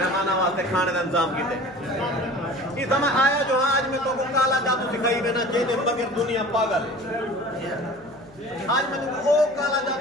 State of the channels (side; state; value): left; noise; hum, 25 dB below the sound